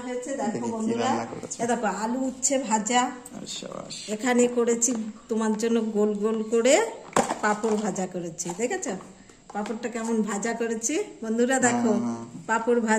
হয়েছে। দেখো বন্ধুরা, দেখো আলু উচ্ছে ভাজা, এখানে করেছি তোমার জন্য গোল গোল করে পাঁপড় ভাজা করেছি। দেখেছো পাঁপড়টা কেমন ভাজা করেছি বন্ধুরা? দেখো পাঁপড়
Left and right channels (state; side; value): identical; both; correlation 1.00